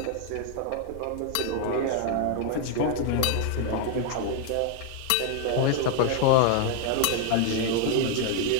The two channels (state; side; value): different; both; correlation 0.00